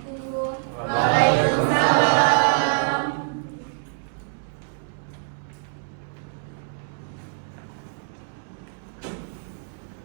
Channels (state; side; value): silent; left; 62 dB below the other